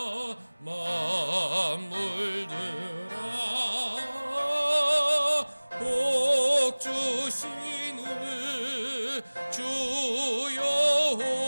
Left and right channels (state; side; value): inverted; both; correlation -1.00